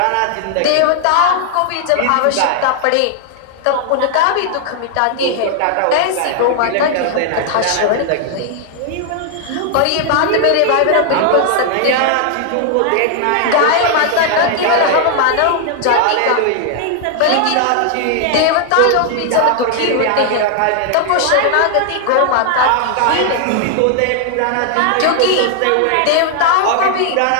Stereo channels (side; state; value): both; different; correlation 0.00